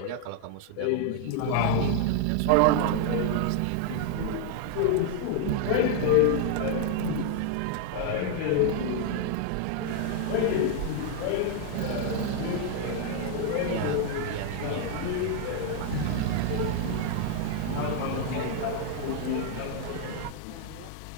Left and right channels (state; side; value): different; both; correlation 0.00